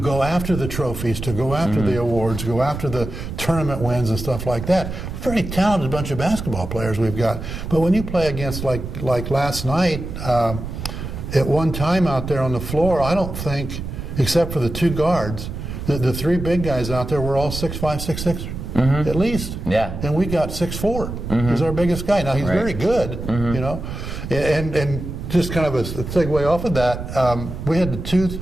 after the trophies, to go after the awards, go after the tournament wins and stuff like that. Very talented bunch of basketball players we've got. But when you play against, like last night, at one time out there on the floor, I don't think, except for the two guards, the three big guys out there were all 6'5", 6'6", at least. And we got 6'4", he's our biggest guy. Now, he's very good, and just kind of a segue off of that, we had the two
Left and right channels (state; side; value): noise; right; rumble, 7 dB below the sound